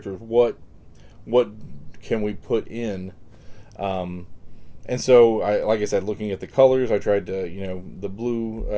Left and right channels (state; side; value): identical; both; correlation 1.00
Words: What can we put in? And so, like I said, looking at the colors, I tried to, the